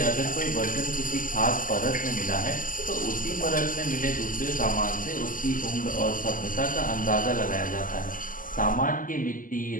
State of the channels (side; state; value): right; late; 0.39 ms